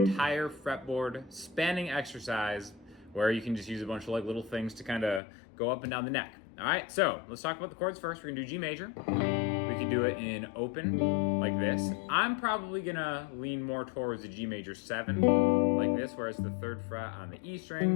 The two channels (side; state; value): right; drops out; at 5.2 s